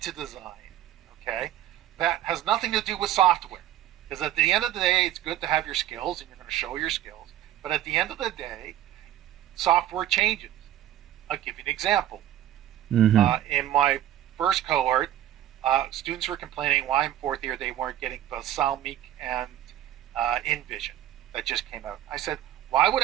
design. Okay, that has nothing to do with software, because at the end of the day it's good to have your skills and you're going to show your skills, but at the end of the day software changes. I'll give you an example. Mm-hmm. In my first cohort, students were complaining why in fourth year they weren't getting Balsamiq and InVision that just came out. I said, why would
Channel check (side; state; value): left; quieter; 12.3 dB